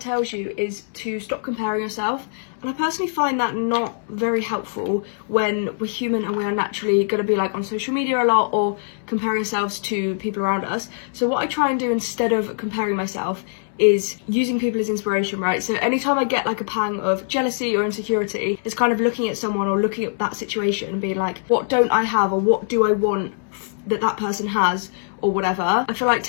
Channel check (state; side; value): silent; right; digital silence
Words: tells you is to stop comparing yourself. And I personally find that not very helpful when we're human and we are naturally going to be like on social media a lot or compare ourselves to people around us. So what I try and do instead of comparing myself is using people as inspiration, right? So anytime I get like a pang of jealousy or insecurity, it's kind of looking at someone or looking at that situation and being like, what don't I have, or what do I want that that person has, or whatever. I feel like